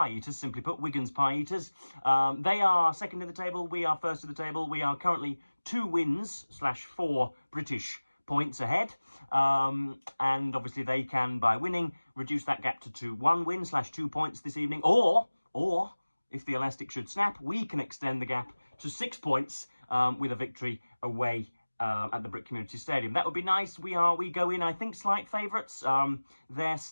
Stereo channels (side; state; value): both; inverted; correlation -1.00